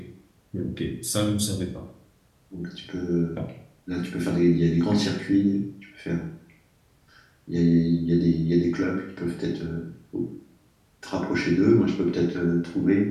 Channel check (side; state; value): both; identical; correlation 1.00